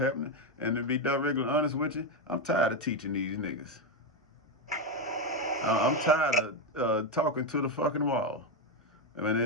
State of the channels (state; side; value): normal; both; correlation 0.08